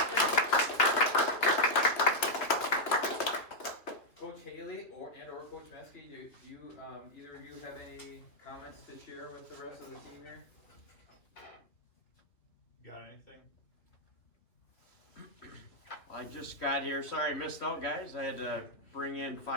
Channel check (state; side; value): late; right; 3.0 ms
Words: Coach Haley or Coach Meskey, do you either of you have any comments to share with the rest of the team here? Got anything? I just got here. Sorry I missed out, guys. I had to bring in